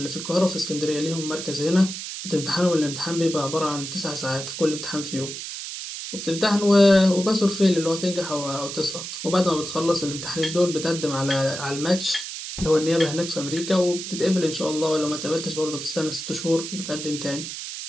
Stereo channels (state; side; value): noise; right; hiss, 8 dB below the sound